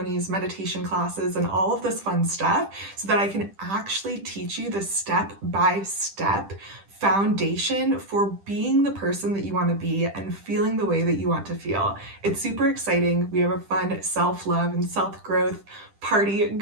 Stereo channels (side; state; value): left; late; 10 ms